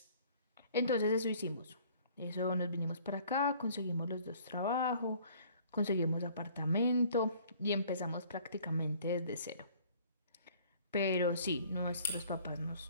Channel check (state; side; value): inverted; both; correlation -0.54